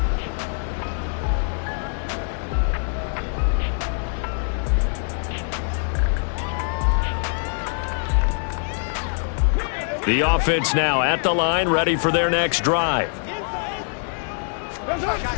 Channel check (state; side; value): silent; right; digital silence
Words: The offense now at the line, ready for their next drive.